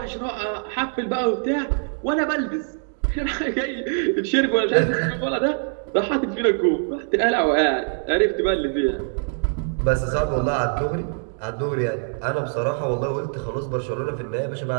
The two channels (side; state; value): left; silent; 63 dB below the other